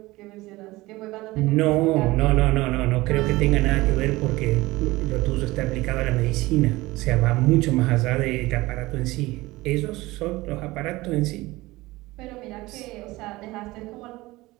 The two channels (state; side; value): quieter; left; 19.8 dB